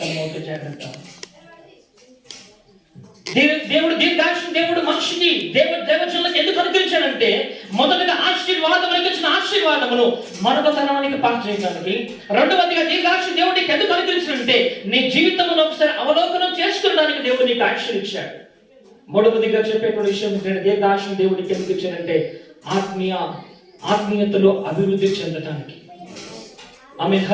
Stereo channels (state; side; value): identical; both; correlation 1.00